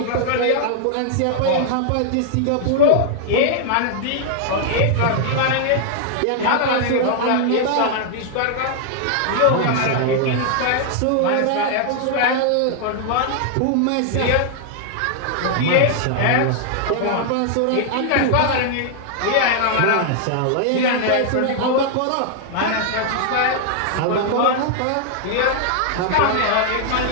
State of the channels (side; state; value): both; different; correlation 0.00